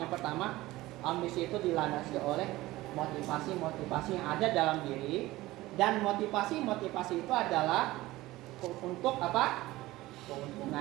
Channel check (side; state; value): left; quieter; 18.1 dB